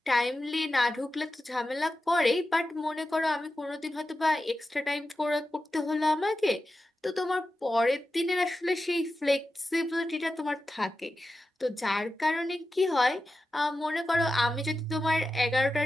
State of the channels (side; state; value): both; normal; correlation 0.92